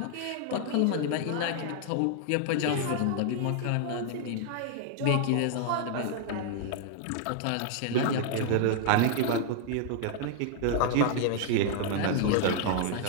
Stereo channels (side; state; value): both; different; correlation 0.00